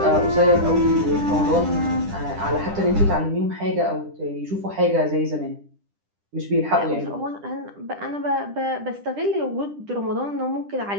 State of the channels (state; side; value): late; left; 10 ms